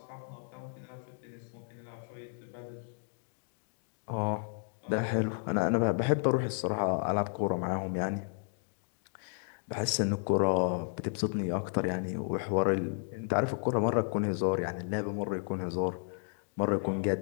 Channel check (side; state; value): right; silent; 56 dB below the other